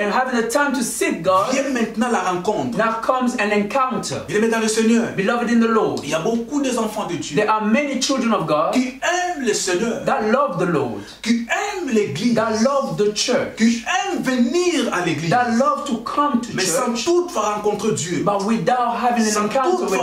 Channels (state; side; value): identical; both; correlation 1.00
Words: having the time to seek God, vient maintenant la rencontre. now comes an encounter. Il est dans le Seigneur. Beloved in the Lord, Il y a beaucoup des enfants de Dieu there are many children of God qui aiment le Seigneur, that love the Lord, qui aiment l'église, that love the church, qui aiment venir à l'église, that love to come to mais sans church, toutefois rencontrer Dieu, but without having an sans encounter with